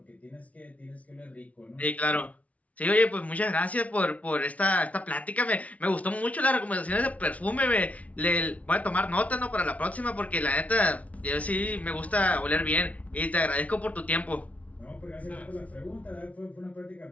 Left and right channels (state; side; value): late; right; 0.068 ms